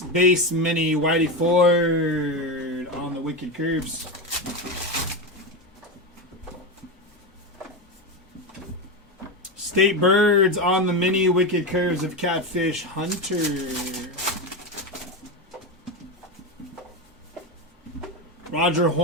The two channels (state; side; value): normal; both; correlation 0.15